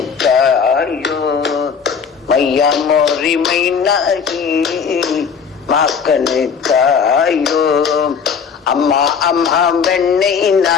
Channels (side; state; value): right; quieter; 6.3 dB